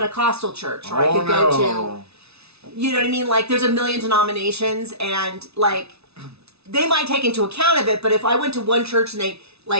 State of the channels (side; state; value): left; late; 0.80 ms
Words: church, or I could go to, you know what I mean? Like, there's a million denominations, and like, they might take into account of it, but if I went to one church and they,